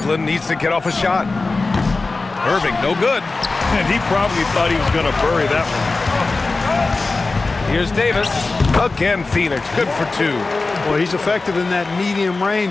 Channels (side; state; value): right; quieter; 3.6 dB